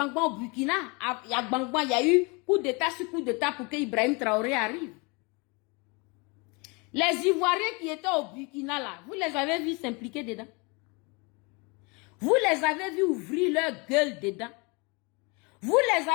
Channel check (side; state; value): right; quieter; 29.3 dB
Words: au Burkina, il y a Gbangba, il y a eu coup d'état sur coup d'état pour que Ibrahim Traoré arrive. Les Ivoiriens qui étaient au Burkina là, vous les avez vus s'impliquer dedans. Vous les avez vus ouvrir leur gueule dedans. Vous les